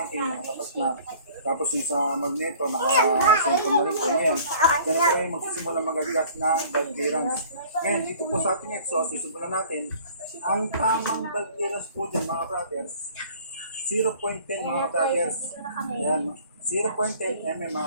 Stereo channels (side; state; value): both; inverted; correlation -0.50